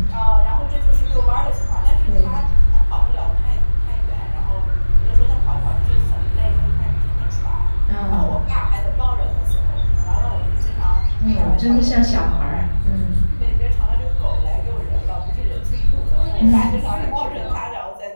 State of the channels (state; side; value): inverted; both; correlation -1.00